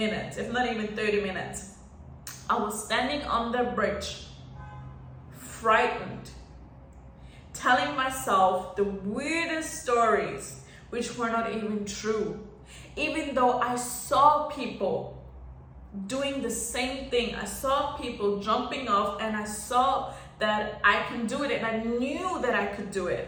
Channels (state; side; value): identical; both; correlation 1.00